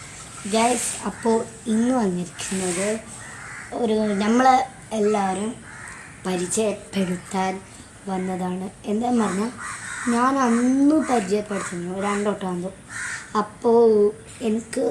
guys. അപ്പോൾ ഇന്ന് വന്നിരിക്കുന്നത് നമ്മളെ എല്ലാവരും പരിചയപ്പെടുത്താൻ വന്നതാണ്. എന്താന്ന് പറഞ്ഞാൽ ഞാൻ അന്ന് പരിചയപ്പെടുത്തുന്നു രണ്ടോട്ടാകുമ്പോൾ. അപ്പോൾ എനിക്ക്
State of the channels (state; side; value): identical; both; correlation 1.00